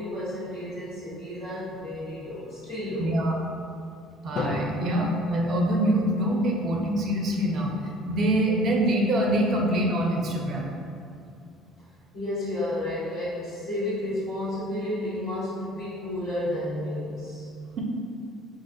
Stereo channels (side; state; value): both; normal; correlation 0.49